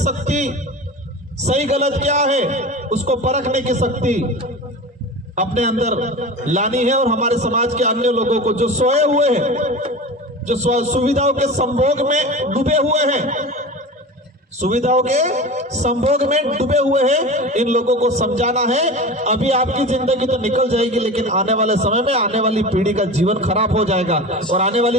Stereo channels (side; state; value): both; normal; correlation 0.31